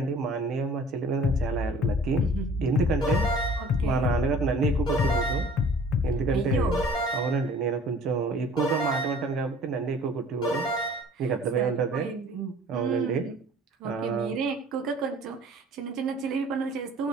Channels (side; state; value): both; normal; correlation 0.49